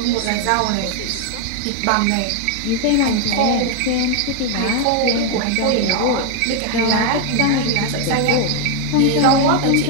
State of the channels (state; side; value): different; both; correlation 0.01